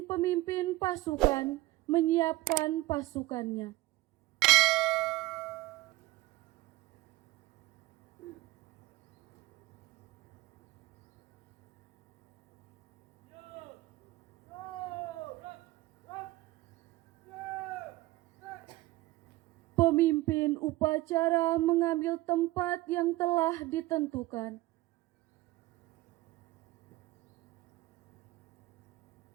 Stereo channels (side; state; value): left; quieter; 18.8 dB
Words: pemimpin pasukan menyiapkan pasukannya. Pemimpin upacara mengambil tempat yang telah ditentukan.